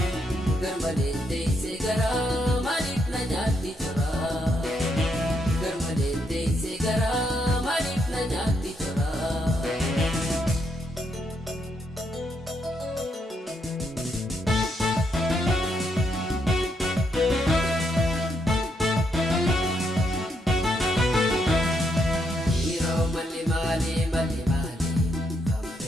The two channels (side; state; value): both; normal; correlation 0.77